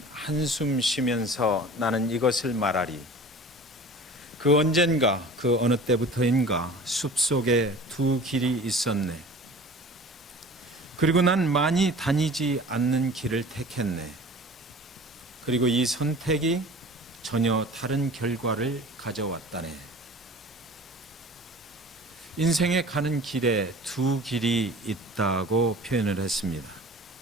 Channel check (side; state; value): both; normal; correlation 0.42